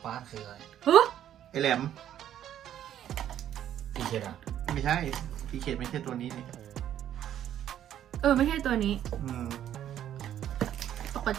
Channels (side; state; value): left; quieter; 10.9 dB